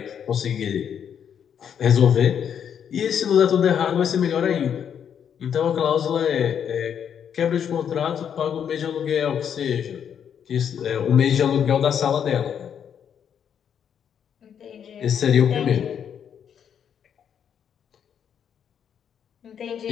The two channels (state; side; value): quieter; right; 8.3 dB